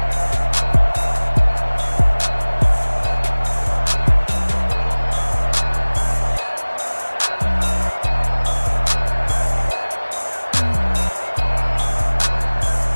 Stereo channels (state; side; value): inverted; both; correlation -1.00